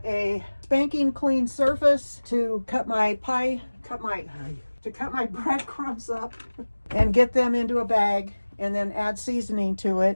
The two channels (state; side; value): inverted; both; correlation -1.00